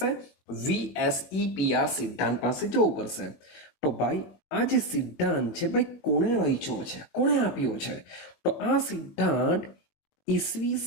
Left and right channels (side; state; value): right; late; 20 ms